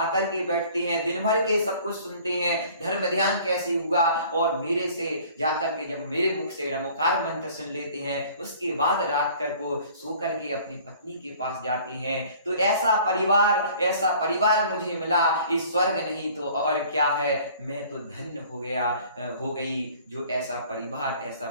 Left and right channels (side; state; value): both; inverted; correlation -0.51